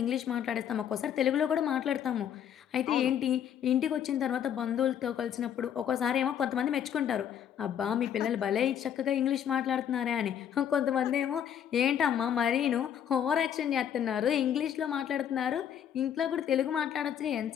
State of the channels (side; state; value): right; quieter; 9.2 dB